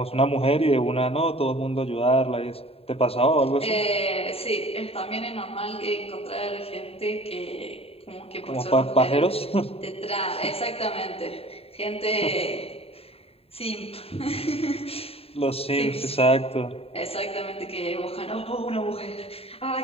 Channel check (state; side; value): late; right; 0.28 ms